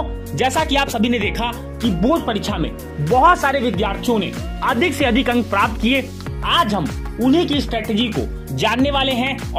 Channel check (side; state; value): both; identical; correlation 1.00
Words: जैसा कि आप सभी ने देखा कि बोर्ड परीक्षा में बहुत सारे विद्यार्थियों ने अधिक से अधिक अंक प्राप्त किए। आज हम उन्हीं की स्ट्रेटेजी को जानने वाले हैं